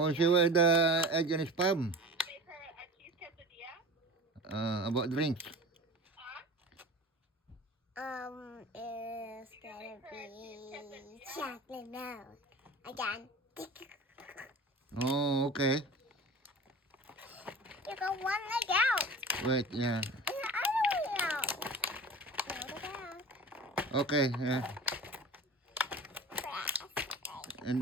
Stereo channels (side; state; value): both; normal; correlation 0.36